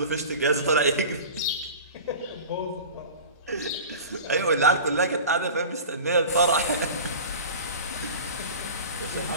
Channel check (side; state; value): both; inverted; correlation -0.35